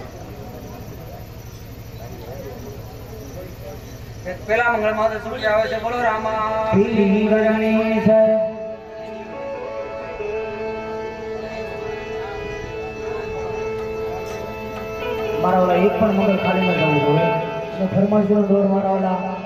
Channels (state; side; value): identical; both; correlation 1.00